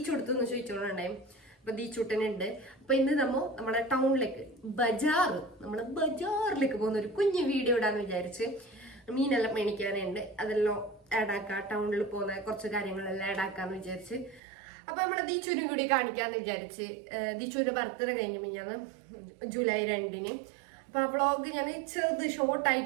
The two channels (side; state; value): left; drops out; at 14.4 s